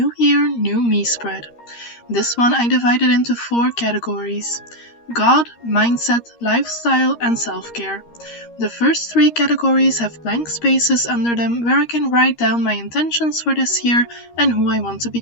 Year, New Me spread. This one I divided into 4 categories: God, mindset, lifestyle, and self-care. The first 3 categories have blank spaces under them where I can write down my intentions for this year and who I want to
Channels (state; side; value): late; right; 13 ms